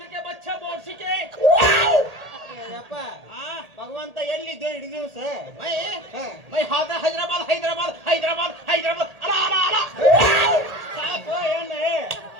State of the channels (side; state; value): left; late; 1.8 ms